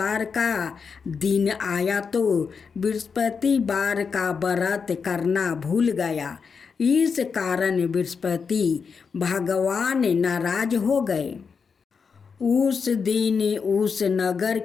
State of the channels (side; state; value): right; quieter; 5.7 dB